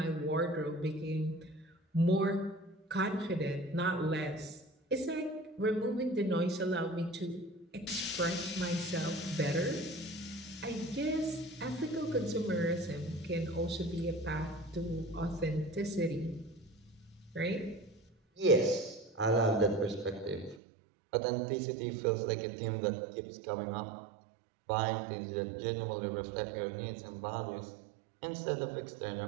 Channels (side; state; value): left; drops out; at 20.6 s